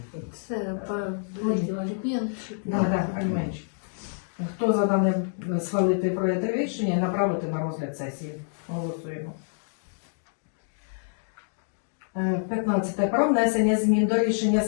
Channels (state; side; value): silent; right; digital silence